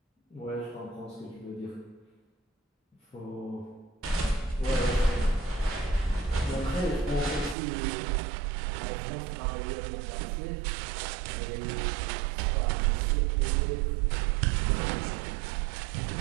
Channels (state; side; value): drops out; left; at 7.6 s